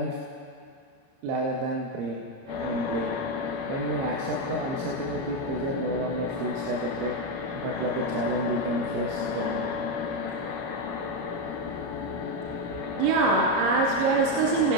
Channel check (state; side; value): late; left; 30 ms